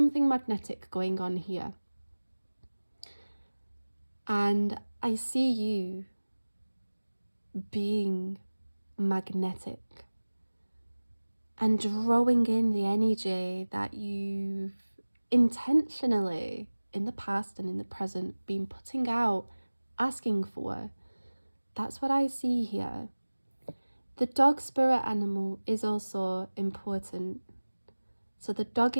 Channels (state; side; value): inverted; both; correlation -1.00